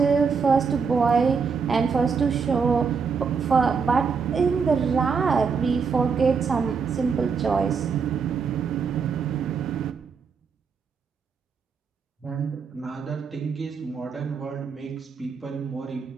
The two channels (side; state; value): left; quieter; 5.6 dB